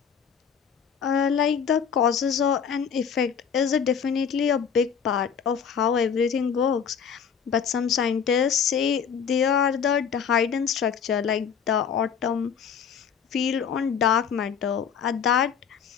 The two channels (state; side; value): quieter; right; 7.3 dB